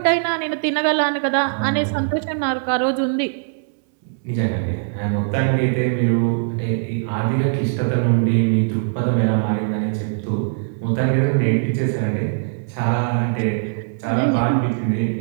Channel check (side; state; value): left; silent; 65 dB below the other